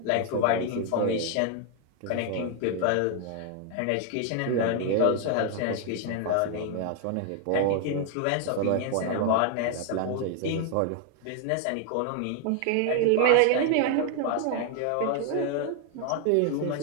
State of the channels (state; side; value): different; both; correlation 0.00